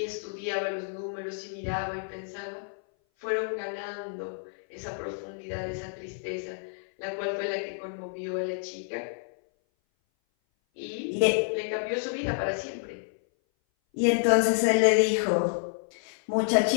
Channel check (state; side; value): silent; right; 57 dB below the other